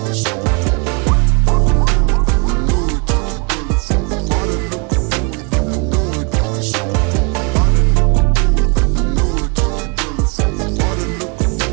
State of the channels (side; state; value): left; quieter; 32.6 dB